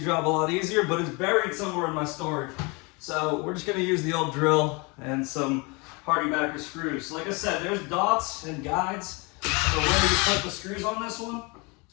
job a lot easier, but it's buried somewhere in my storage. So we're just gonna use the old drill and some hardibacker screws. So like I said, there's dots and guides for where you put the screws on this one.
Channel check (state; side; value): quieter; right; 28.6 dB